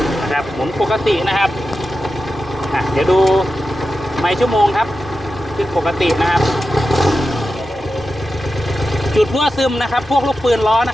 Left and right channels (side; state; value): both; normal; correlation 0.91